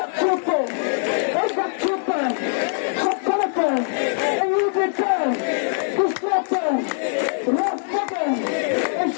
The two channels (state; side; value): silent; right; digital silence